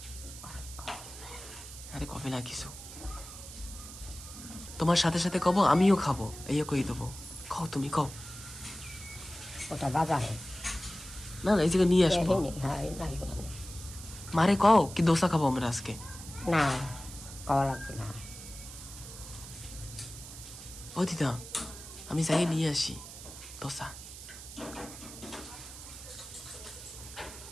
আরে কবে না কিছু, তোমার সাথে সাথে কব আমিও খাবো, এই কই দেবো। কও তুমি কও। ওটা বাজারে না না, এই জায়গায় নিয়ে আসবো। হ্যাঁ, মারে কও কি দোসা খাবো আমরা আজকে। না খাওয়া লাগবে না। ও দিদা আমি যাই নিয়ে আসি দোসা।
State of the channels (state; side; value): noise; right; hiss, 13 dB below the sound